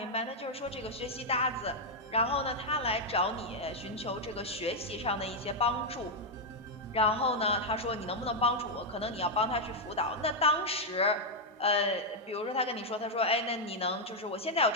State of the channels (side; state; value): both; normal; correlation -0.01